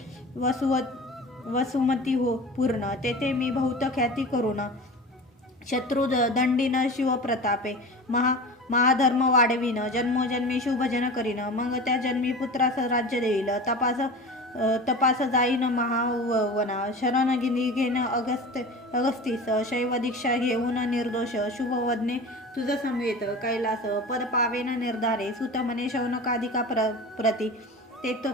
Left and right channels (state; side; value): normal; both; correlation 0.34